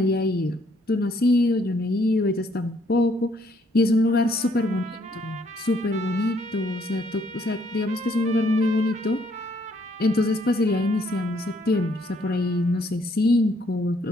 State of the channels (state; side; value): normal; both; correlation 0.68